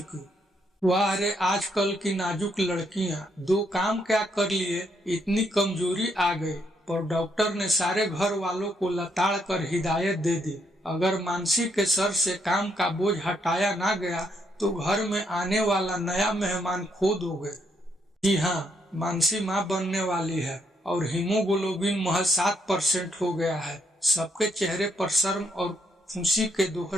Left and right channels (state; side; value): normal; both; correlation 0.75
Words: वाह रे, आजकल की नाजुक लड़कियां, 2 काम क्या कर लिए, इतनी कमजोरी आ गई। पर डॉक्टर ने सारे घर वालों को लताड़ कर हिदायत दे दी, अगर मानसी के सर से काम का बोझ हटाया ना गया तो घर में आने वाला नया मेहमान खो दोगे। जी हाँ, मानसी माँ बनने वाली है और हीमोग्लोबिन महज 7% हो गया है। सबके चेहरे पर शर्म और खुशी के